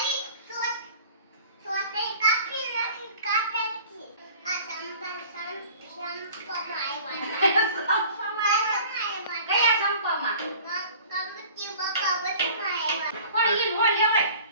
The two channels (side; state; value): both; inverted; correlation -0.46